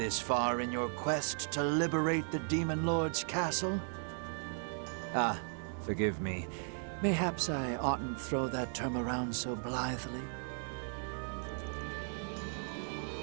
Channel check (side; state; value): left; silent; 54 dB below the other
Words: far in your quest to liberate the Demon Lord's castle. Ah, forgive me. Mayhaps I oughtn't throw that term around so blithely.